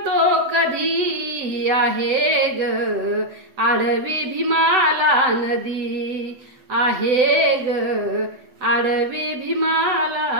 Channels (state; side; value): late; left; 7.9 ms